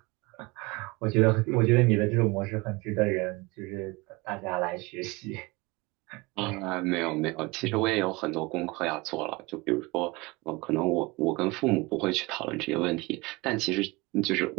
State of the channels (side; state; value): left; quieter; 24.1 dB